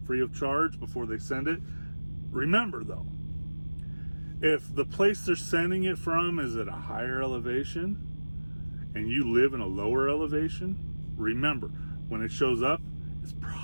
free of charge before they send it. Remember, though, if the place they're sending it from is at a higher elevation and you live in a lower elevation, remember, when it shows up, it's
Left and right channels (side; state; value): both; inverted; correlation -1.00